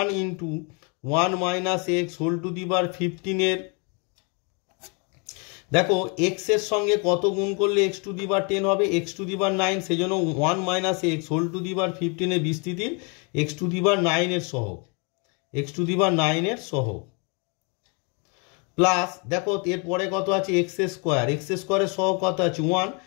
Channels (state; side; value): quieter; right; 34.5 dB